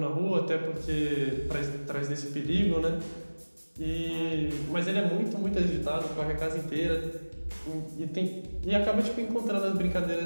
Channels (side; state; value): both; inverted; correlation -1.00